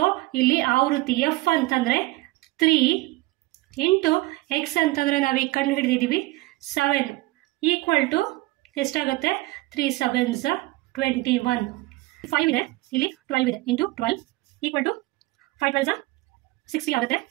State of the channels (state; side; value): quieter; left; 20.0 dB